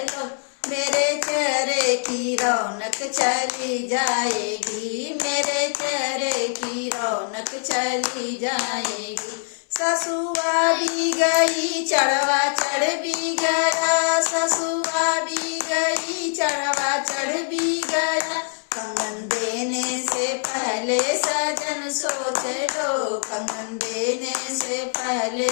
मेरे चेहरे की रौनक चली जाएगी, मेरे चेहरे की रौनक चली जाएगी। ससुआ भी गई चढ़वा चढ़ भी गया, ससुआ भी गई चढ़वा चढ़ भी गया, कंगन देने से पहले सजन सोच लो, कंगन देने से पहले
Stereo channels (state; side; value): silent; right; 63 dB below the other